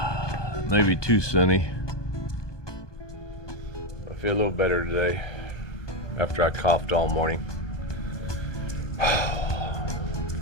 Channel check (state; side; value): late; right; 1.2 ms